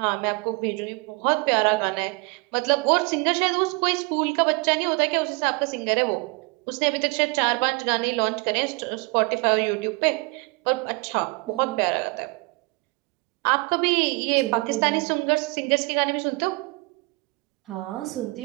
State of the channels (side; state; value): left; quieter; 27.4 dB